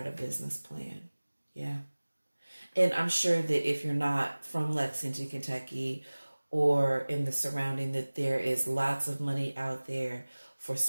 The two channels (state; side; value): inverted; both; correlation -1.00